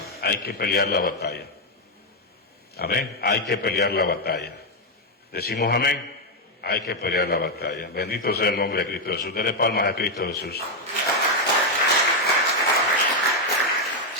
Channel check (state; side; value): normal; both; correlation 0.02